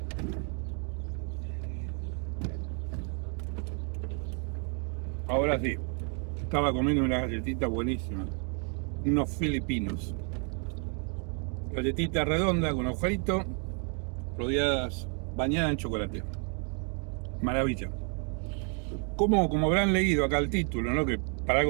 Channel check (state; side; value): quieter; left; 40.0 dB